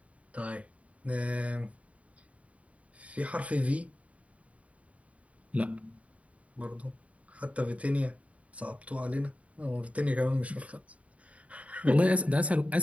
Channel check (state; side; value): late; left; 0.066 ms